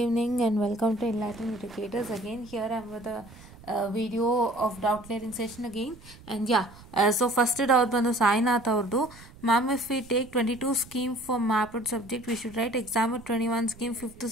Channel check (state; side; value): noise; right; rumble, 21 dB below the sound